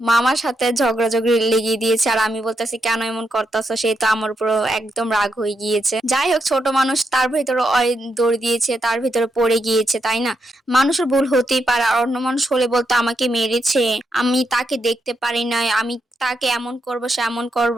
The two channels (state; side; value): normal; both; correlation 0.82